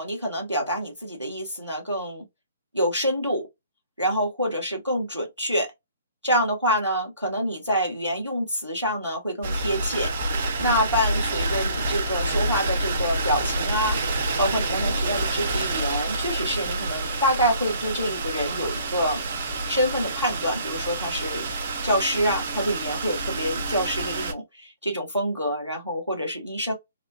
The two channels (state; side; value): inverted; both; correlation -0.59